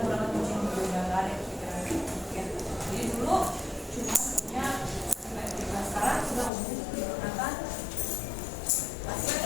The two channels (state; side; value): drops out; right; at 6.5 s